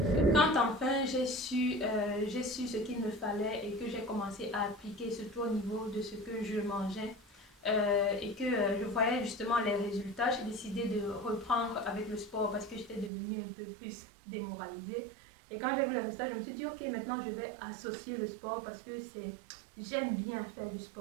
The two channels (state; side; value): drops out; left; at 13.1 s